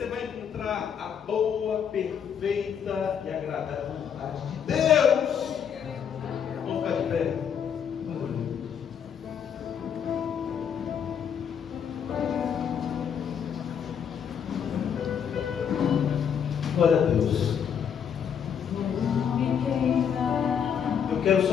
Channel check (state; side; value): quieter; right; 7.8 dB